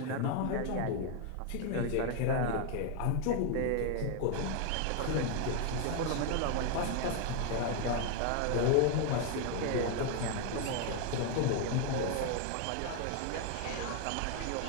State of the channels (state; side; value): different; both; correlation 0.01